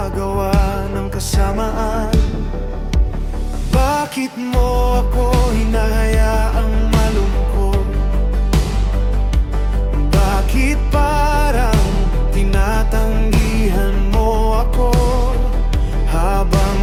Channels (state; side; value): identical; both; correlation 1.00